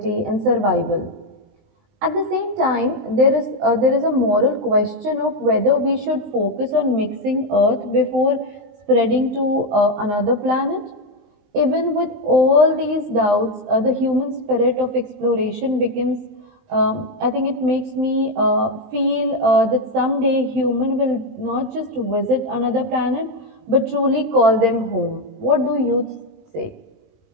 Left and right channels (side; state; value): left; late; 19 ms